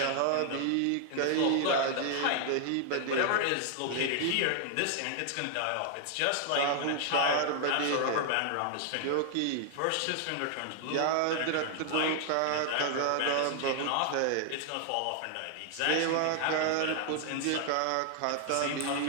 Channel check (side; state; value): both; different; correlation 0.00